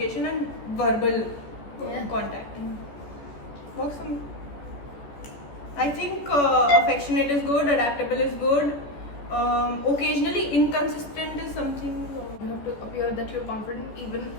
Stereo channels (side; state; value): right; late; 14 ms